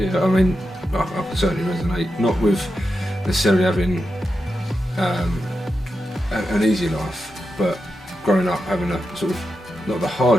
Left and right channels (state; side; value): normal; both; correlation 0.88